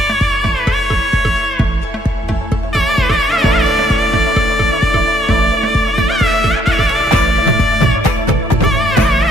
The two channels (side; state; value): both; normal; correlation 0.69